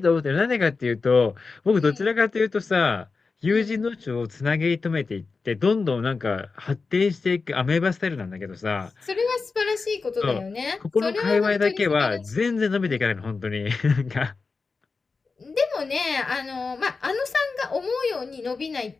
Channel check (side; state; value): right; quieter; 4.4 dB